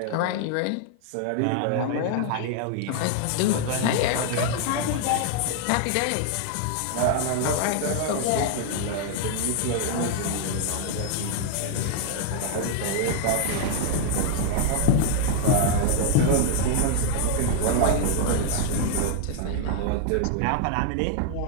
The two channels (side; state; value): both; different; correlation 0.00